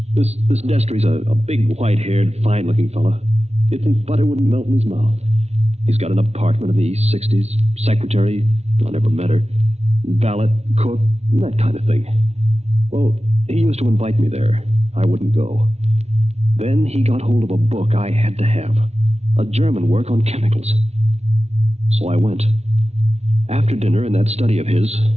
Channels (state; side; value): late; left; 0.31 ms